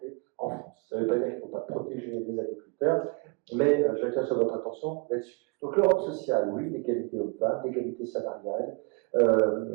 en France. Ça ne veut pas dire qu'il ne faut pas protéger les agriculteurs, mais j'attire sur votre attention là-dessus. Donc l'Europe sociale, oui, l'égalité hommes-femmes, l'égalité salariale,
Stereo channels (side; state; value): left; quieter; 30.7 dB